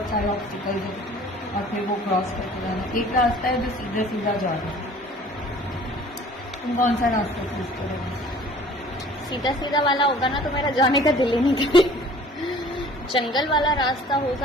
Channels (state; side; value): normal; both; correlation 0.50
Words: ऑब्स्टिकल्स हैं, और फिर वो क्रॉस करके जाना। एक रास्ता है जो सीधा सीधा जा रहा है। तुम कौन सा रास्ता चूज करोगे? सीधा सीधा वाला होगा ना तो मेरा जाने का दिल ही नहीं करेगा। जंगल वाला रास्ता